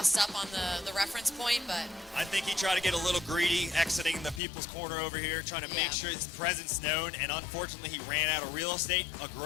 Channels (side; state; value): right; drops out; at 4.4 s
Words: up on the reference point, but... I think he tried to get a little greedy, exiting the people's corner over here, trying to make sure his presence known, and unfortunately he ran out of real estate. A